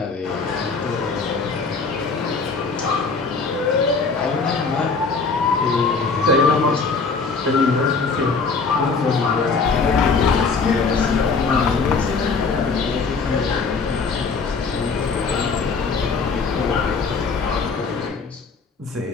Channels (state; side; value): quieter; right; 4.6 dB